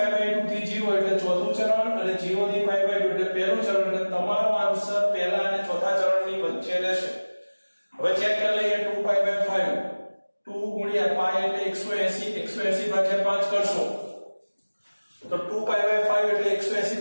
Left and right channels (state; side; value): inverted; both; correlation -1.00